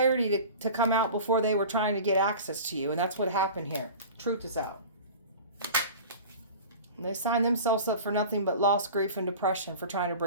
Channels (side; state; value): both; inverted; correlation -0.37